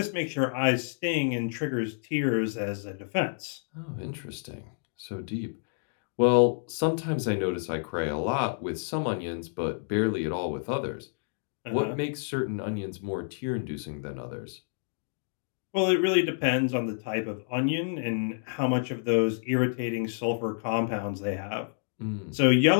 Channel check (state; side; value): silent; right; digital silence